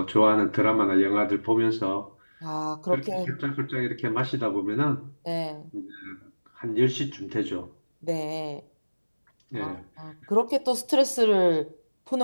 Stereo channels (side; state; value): both; inverted; correlation -1.00